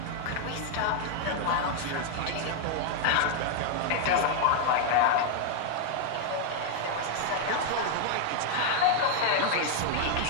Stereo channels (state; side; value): different; both; correlation 0.00